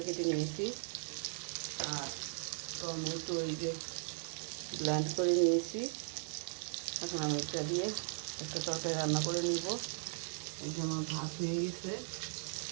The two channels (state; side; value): silent; left; digital silence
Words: কেটে নিয়েছি, আর টমেটো এই যে ব্লেন্ড করে নিয়েছি। এখন আমি এটা দিয়ে একটা তরকারি রান্না করে নিব। এই যে আমার ভাত হয়ে গেছে,